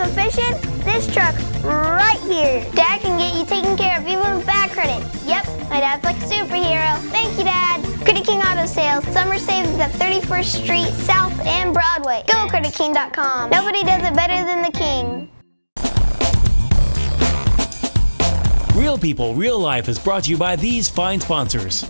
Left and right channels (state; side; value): inverted; both; correlation -1.00